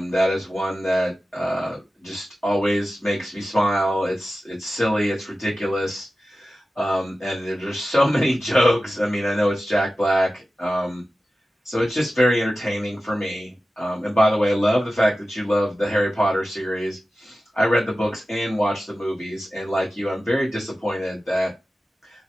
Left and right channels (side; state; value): both; normal; correlation 0.94